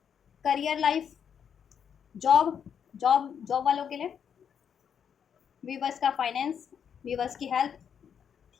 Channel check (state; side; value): quieter; right; 7.8 dB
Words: career life, job job वालों के लिए, व्यूवर्स का फाइनेंस, व्यूवर्स की हेल्थ,